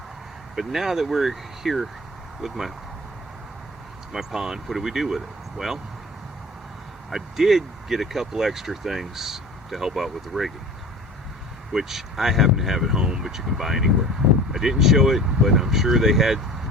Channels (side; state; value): both; normal; correlation 0.40